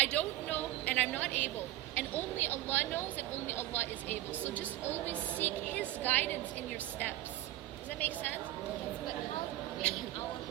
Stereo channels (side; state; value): left; quieter; 15.3 dB